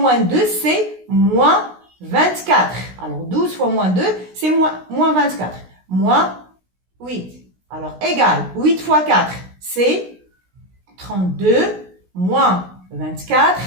2 c'est moins 24. Alors 12 fois moins 2 c'est moins 24. Moins 8. Alors égal, 8 fois 4 c'est 32 moins 24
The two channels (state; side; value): late; left; 16 ms